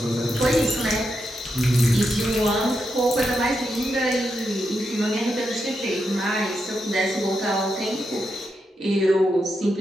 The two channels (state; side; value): normal; both; correlation 0.84